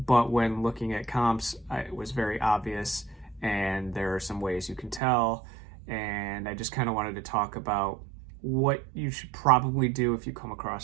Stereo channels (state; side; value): drops out; left; at 5.0 s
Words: when looking at comps, it was very obvious, and there are some ways you can tell. And I just kind of wanted to talk about what you should probably do if you come